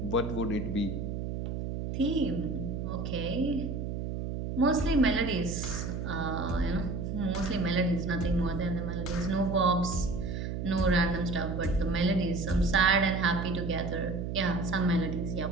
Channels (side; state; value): right; noise; hum, 4 dB below the sound